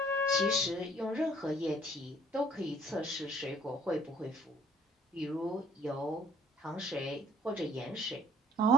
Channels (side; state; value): both; normal; correlation 0.56